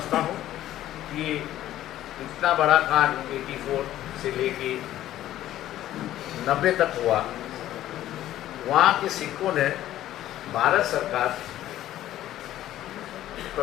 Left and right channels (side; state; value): right; quieter; 13.3 dB